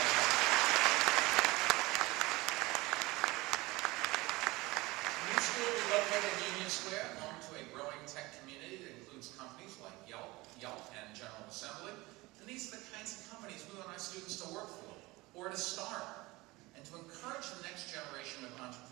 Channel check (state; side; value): quieter; left; 21.7 dB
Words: Will be located in Union Square, home to a growing tech community that includes companies like Yelp, and General Assembly. And these are the kinds of companies we want our students to work for, or to start, and to encourage the next generation of